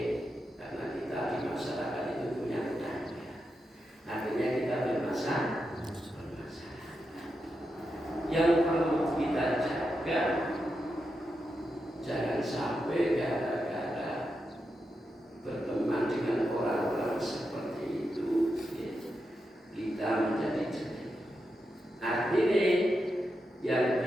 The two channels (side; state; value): both; normal; correlation 0.87